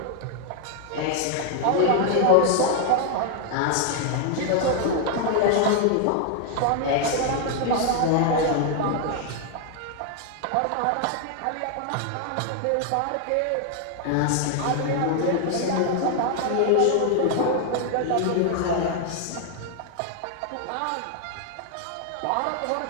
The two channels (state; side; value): different; both; correlation 0.00